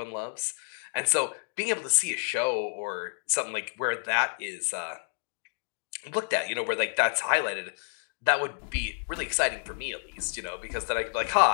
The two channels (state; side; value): silent; right; digital silence